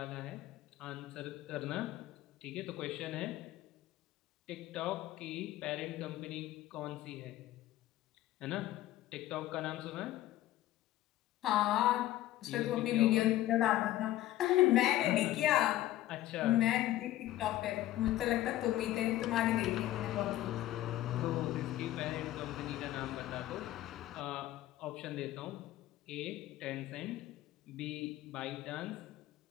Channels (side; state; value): right; quieter; 14.6 dB